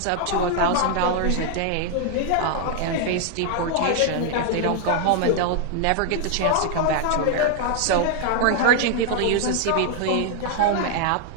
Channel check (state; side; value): different; both; correlation 0.00